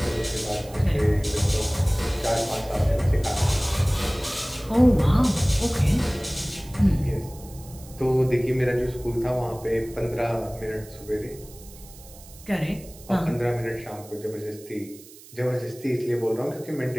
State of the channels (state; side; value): noise; right; hiss, 20 dB below the sound